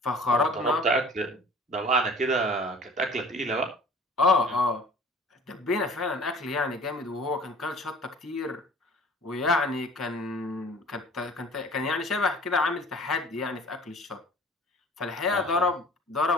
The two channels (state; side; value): normal; both; correlation 0.47